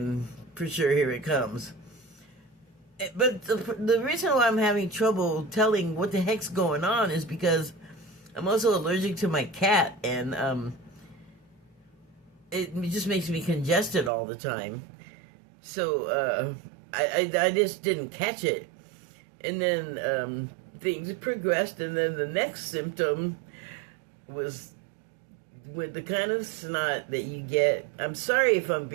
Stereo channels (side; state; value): left; drops out; at 14.1 s